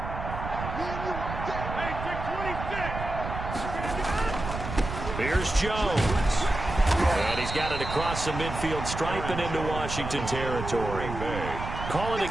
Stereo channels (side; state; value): right; noise; rumble, 6 dB below the sound